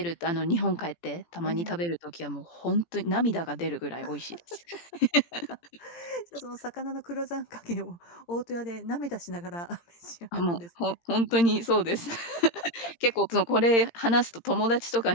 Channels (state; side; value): late; right; 17 ms